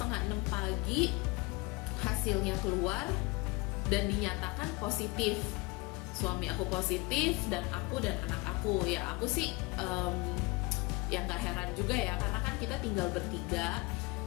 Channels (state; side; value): quieter; right; 25.1 dB